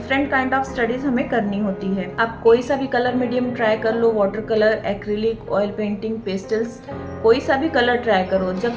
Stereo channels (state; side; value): identical; both; correlation 1.00